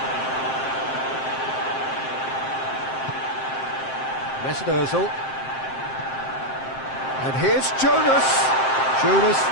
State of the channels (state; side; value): late; right; 7.6 ms